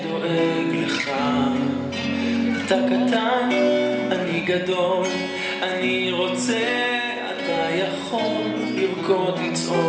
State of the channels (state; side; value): identical; both; correlation 1.00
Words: לך. אתה קטן, אני גדול, אני רוצה, אתה יכול לרקוד,